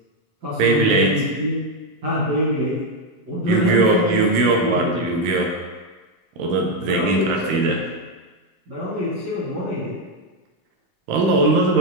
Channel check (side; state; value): left; late; 14 ms